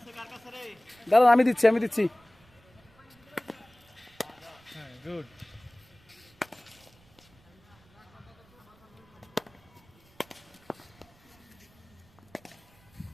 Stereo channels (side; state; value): right; noise; rumble, 29 dB below the sound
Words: দাদা আমি দিচ্ছি হ্যাঁ গুড